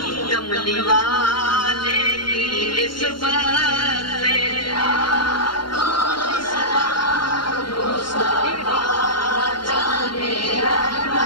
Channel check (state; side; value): late; right; 0.72 ms